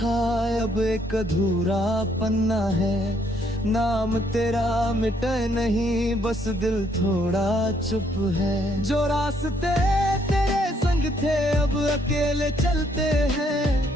अब एक अधूरा पन्ना है, नाम तेरा मिटे नहीं, बस दिल थोड़ा चुप है। जो रास्ते तेरे संग थे अब अकेले चलते हैं,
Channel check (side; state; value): both; normal; correlation 0.69